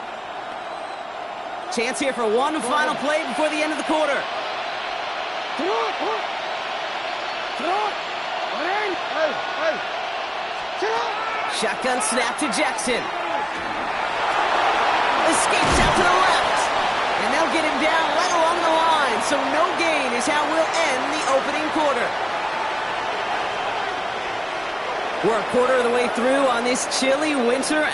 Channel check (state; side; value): identical; both; correlation 1.00